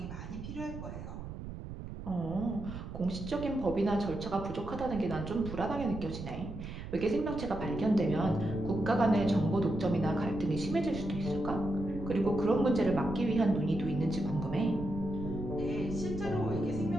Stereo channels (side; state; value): right; noise; rumble, 9 dB below the sound